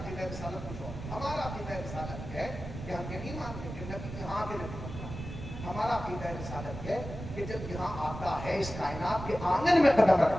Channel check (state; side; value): noise; right; rumble, 9 dB below the sound